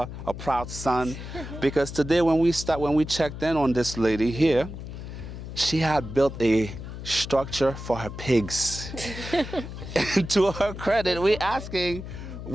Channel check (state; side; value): noise; left; hum, 10 dB below the sound